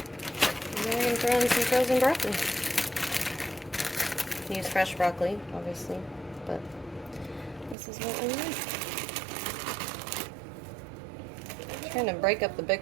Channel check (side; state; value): left; drops out; at 7.8 s